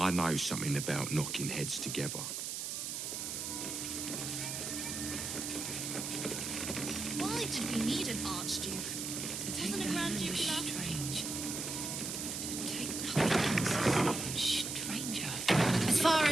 know something about knocking heads together. Why did we need an Archduke? Wasn't a Grand Duke enough? Strange. To take nothing stranger. As far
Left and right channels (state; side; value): noise; right; hiss, 4 dB below the sound